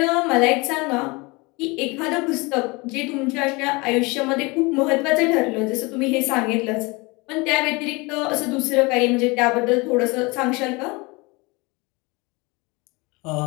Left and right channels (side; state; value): right; quieter; 25.9 dB